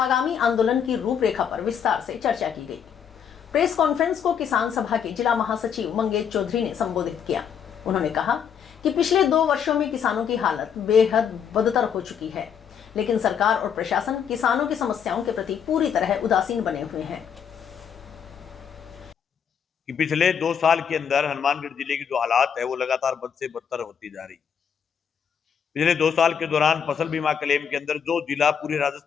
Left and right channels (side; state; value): right; quieter; 7.7 dB